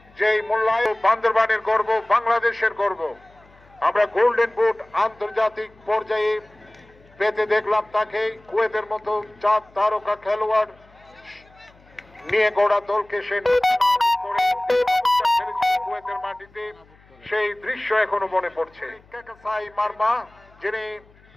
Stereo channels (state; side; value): noise; left; hum, 28 dB below the sound